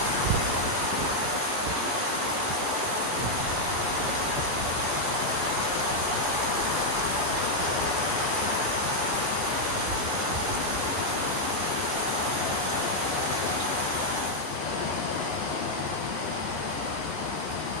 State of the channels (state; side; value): late; left; 15 ms